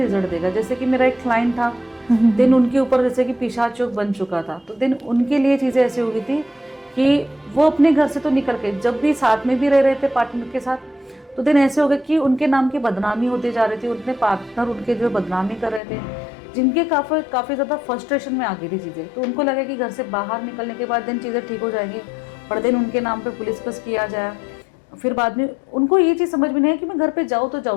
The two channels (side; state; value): right; drops out; at 15.8 s